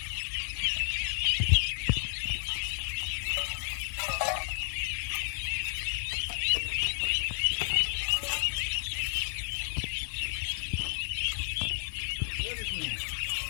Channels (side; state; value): right; silent; 57 dB below the other